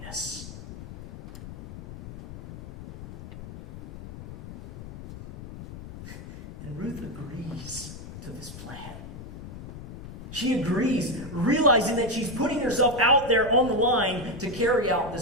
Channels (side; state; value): left; noise; rumble, 13 dB below the sound